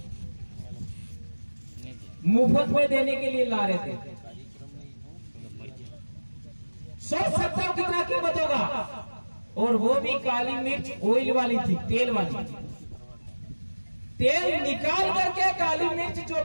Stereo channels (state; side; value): inverted; both; correlation -1.00